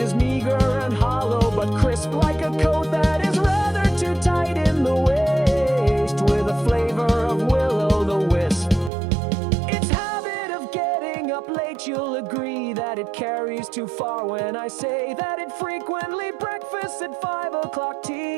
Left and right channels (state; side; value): drops out; left; at 8.9 s